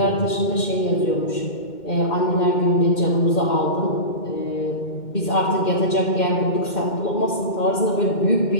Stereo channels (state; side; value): late; right; 2.1 ms